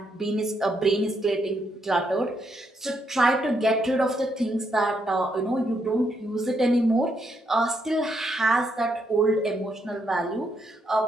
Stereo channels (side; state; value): both; normal; correlation 0.77